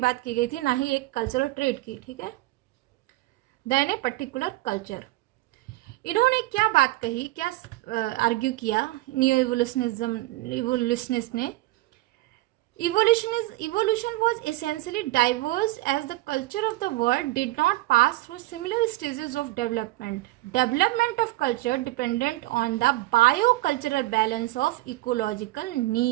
की गई थी, ना ही एक कल्चरल ट्रेट की, ठीक है, देन ए पर्टिकुलर कल्चर। इन्होंने क्या बात कही, क्या आर्ग्यू किया न्यू इवोल्यूशनिस्ट ने? Evolution was essentially diverse as the culture of the world did not pass through similar stages of development. Development of culture dependent on the biocultural balance of ecological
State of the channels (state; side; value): quieter; left; 18.7 dB